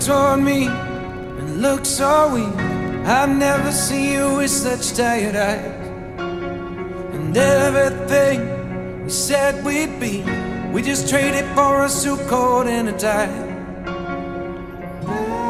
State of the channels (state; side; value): identical; both; correlation 1.00